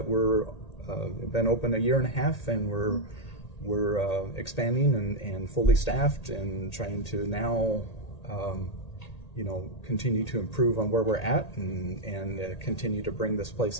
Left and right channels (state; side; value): late; right; 1.8 ms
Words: we're been open a year and a half, and we're expanding and fully staffed and trying to now you know, continue to improve on where we're at and continue to bring this place